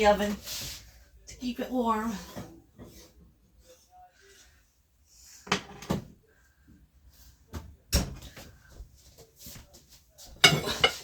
oven to keep it warm.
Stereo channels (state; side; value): identical; both; correlation 1.00